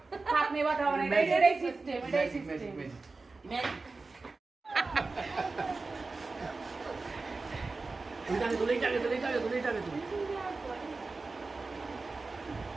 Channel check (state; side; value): quieter; left; 3.8 dB